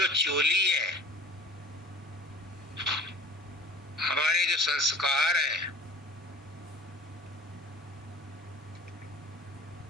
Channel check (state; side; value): normal; both; correlation 0.45